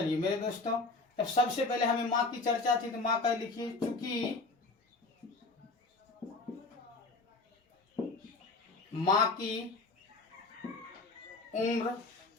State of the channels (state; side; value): quieter; right; 3.5 dB